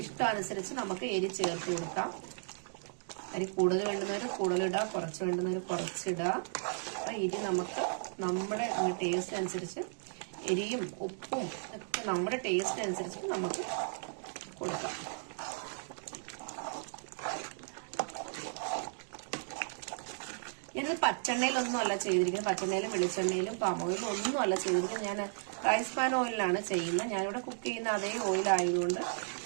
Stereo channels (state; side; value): silent; left; digital silence